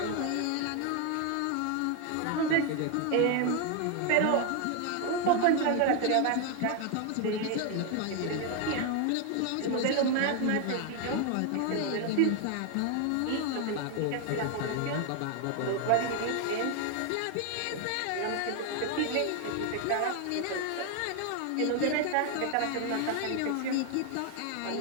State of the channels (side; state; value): both; different; correlation 0.01